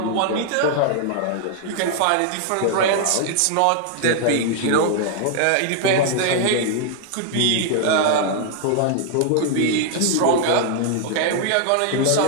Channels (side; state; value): both; different; correlation 0.00